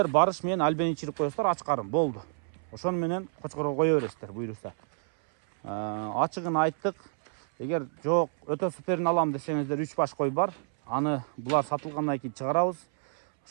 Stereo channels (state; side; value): silent; left; 59 dB below the other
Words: барыш менен альбен ичирип коесуздар, ач карым болду. Ошону менен кочкорго кое бересиздер, буйруса. Ачыгын айттык. Эгер жок, өтө суперин алам десеңиздер 3 баш кой бар. Аны булар сатылгандан кийин чыгарабыз.